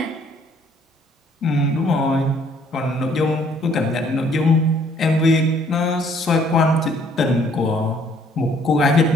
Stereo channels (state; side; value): normal; both; correlation 0.62